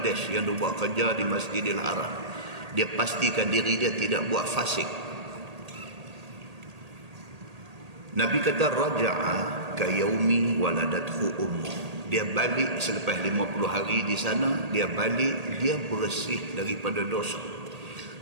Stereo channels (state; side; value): late; left; 1.8 ms